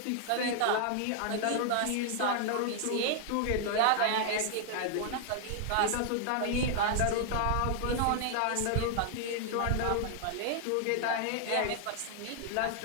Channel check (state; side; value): different; both; correlation 0.00